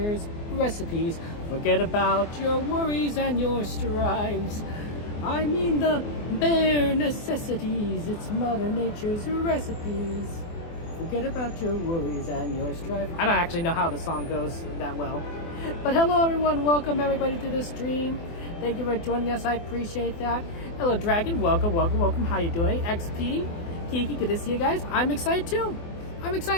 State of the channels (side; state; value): right; late; 24 ms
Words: recipes. Forget about your worries and your strives. I mean the bare necessities, it's Mother Nature's recipes. Forget about your worries and your strife. I don't actually know how the song goes that well. But hello everyone, welcome everybody to the stream. Thank you for joining us, I appreciate that. Hello Dragon, welcome. How you doing? XP, Kiki, good to see you guys. I'm excited too